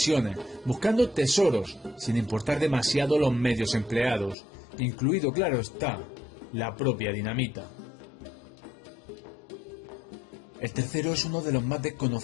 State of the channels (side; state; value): right; drops out; at 4.4 s